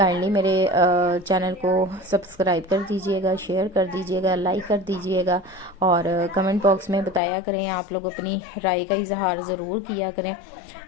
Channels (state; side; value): drops out; right; at 7.2 s